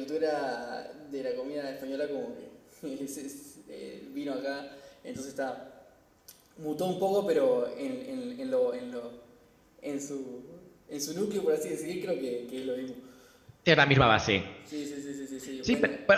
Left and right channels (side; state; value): both; identical; correlation 1.00